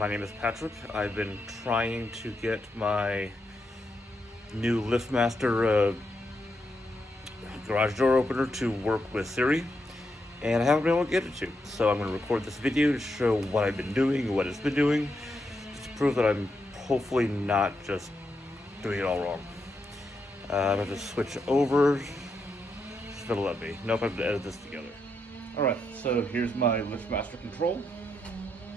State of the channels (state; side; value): normal; both; correlation 0.82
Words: name is Patrick. I've been trying to get my new LiftMaster garage door opener to work with Siri, and I haven't been able to get it to. So I'm going to record this video to show what I've been doing, what it's been doing, just to prove that I'm hopefully not just doing it all wrong. I'm going to switch over. It's going to let me. Nope, I have to edit this together. Alright, so here's my LiftMaster control.